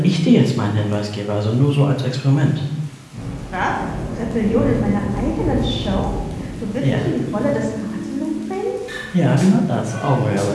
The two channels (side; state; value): both; identical; correlation 1.00